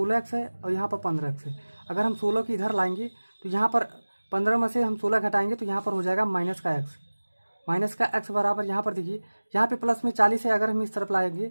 है और यहाँ पर 15x है। अगर हम 16 की इधर लाएंगे तो यहाँ पर 15 में से हम 16 घटाएंगे तो यहाँ पर हो जाएगा माइनस का x बराबर, यहाँ पर देखिए यहाँ पे प्लस में 40 है, अगर हम इस तरफ लाएंगे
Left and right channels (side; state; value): both; inverted; correlation -1.00